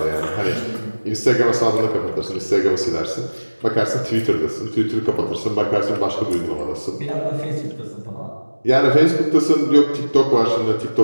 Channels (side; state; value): both; inverted; correlation -1.00